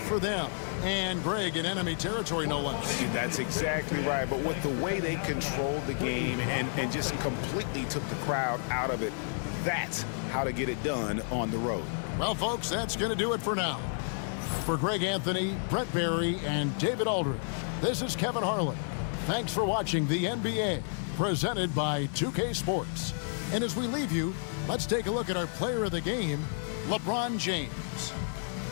for them. And Greg, in enemy territory, no less. That's exactly right. But with the way they controlled the game and just completely took the crowd out of it, that's how to get it done on the road. Well, folks, that's going to do it for now. For Greg Anthony, Brett Barry, and David Aldridge, this is Kevin Harlan. Thanks for watching the NBA, presented by 2K Sports. And as we leave you, let's take a look at our player of the game, LeBron James.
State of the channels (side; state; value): right; silent; 55 dB below the other